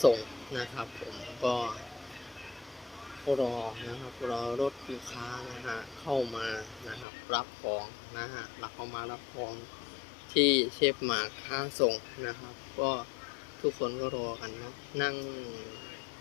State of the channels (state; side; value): drops out; right; at 7.1 s